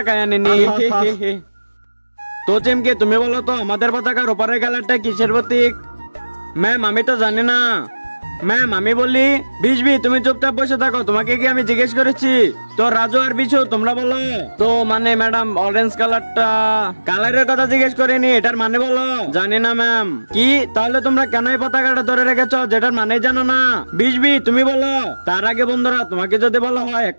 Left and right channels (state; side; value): inverted; both; correlation -1.00